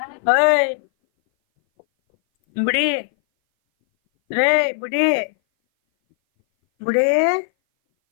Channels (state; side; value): silent; right; 60 dB below the other